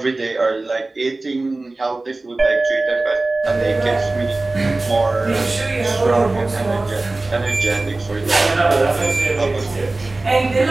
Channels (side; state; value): left; quieter; 3.1 dB